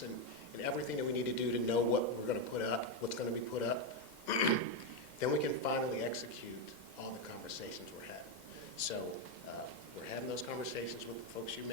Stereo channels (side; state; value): right; late; 2.1 ms